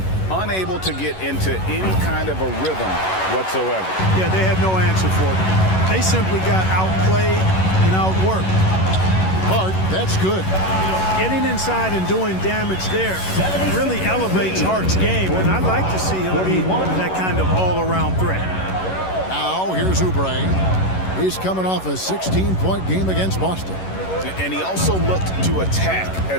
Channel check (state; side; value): late; right; 11 ms